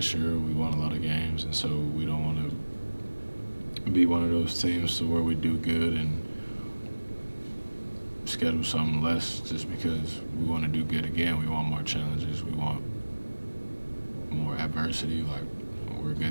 year. We won a lot of games, and so we don't want to be one of those teams to where we do good and schedule something less just because we want to do good again. We want more challenges. We want more adversity. Like, we're a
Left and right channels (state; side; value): inverted; both; correlation -1.00